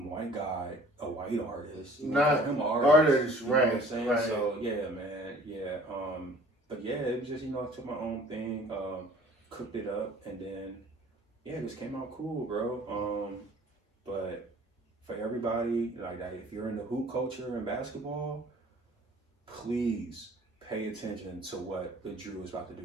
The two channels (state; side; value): normal; both; correlation 0.51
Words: guy a white artist. Not him an artist, you know right? What I'm saying? Right. So yeah, man, yeah. But yeah, it was just I took my own thing, cooked it up, and then it just came out cool, bro. But for everybody, like if you're in the hoop culture and basketball, please pay attention to what the Drew is about to